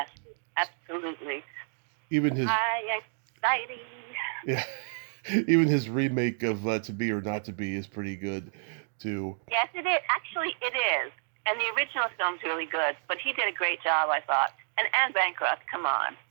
absolutely. Even his High Anxiety. Yeah. Even his remake of To Be or Not to Be is pretty good too. Yes, it is. Actually, it is. And the original film's really good, but he did a great job, I thought. And Anne Bancroft, come on.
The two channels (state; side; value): silent; left; digital silence